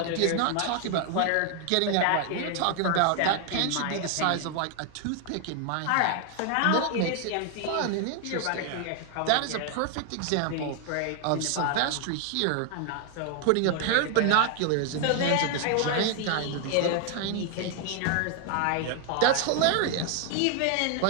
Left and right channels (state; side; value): different; both; correlation 0.00